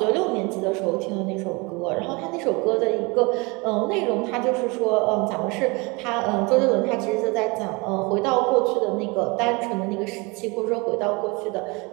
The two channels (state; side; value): quieter; left; 27.4 dB